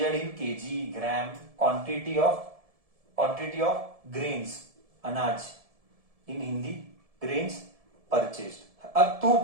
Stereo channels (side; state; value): left; late; 1.7 ms